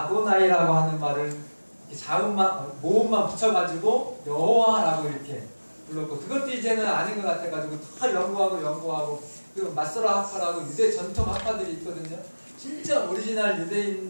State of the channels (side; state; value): both; inverted; correlation -1.00